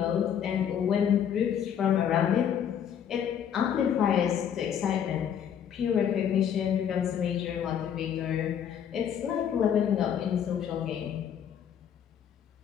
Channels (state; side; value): quieter; right; 8.8 dB